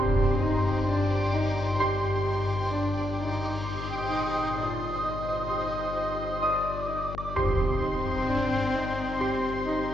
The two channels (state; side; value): noise; left; hum, 8 dB below the sound